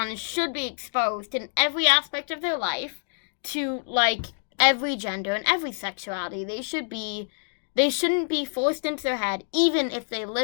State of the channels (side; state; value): right; silent; digital silence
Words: should be exposed in every aspect of their life to like every gender and every sexuality. They shouldn't be forced into their head, even if they